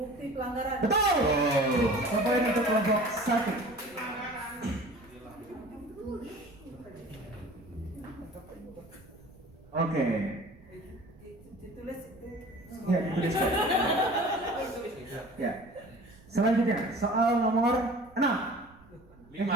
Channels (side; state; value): right; noise; rumble, 26 dB below the sound